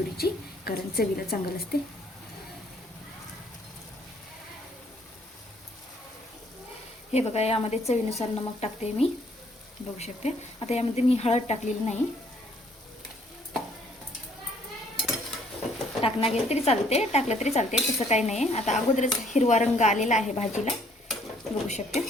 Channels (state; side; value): normal; both; correlation 0.63